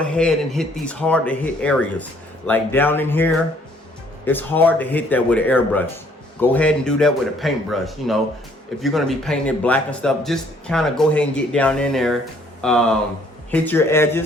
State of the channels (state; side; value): normal; both; correlation 0.62